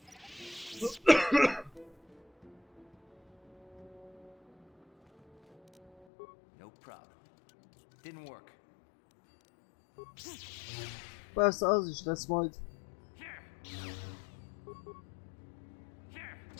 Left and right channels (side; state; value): right; drops out; at 6.1 s